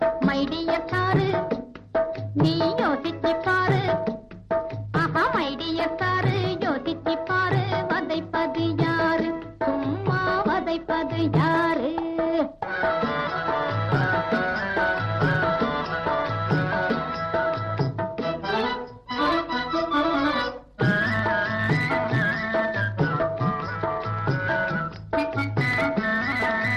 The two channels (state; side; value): identical; both; correlation 1.00